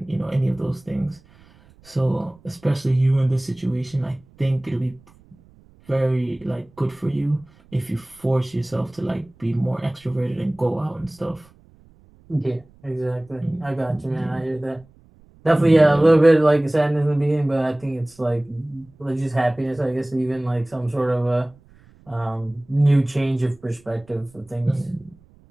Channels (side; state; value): right; noise; rumble, 28 dB below the sound